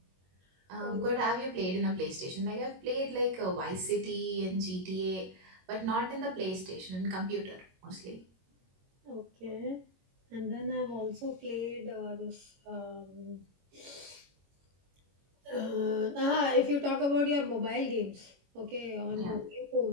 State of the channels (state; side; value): late; left; 21 ms